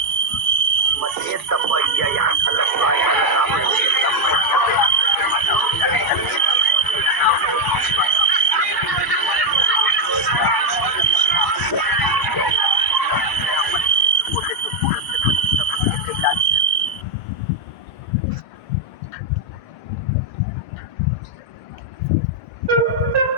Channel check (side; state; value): right; late; 2.3 ms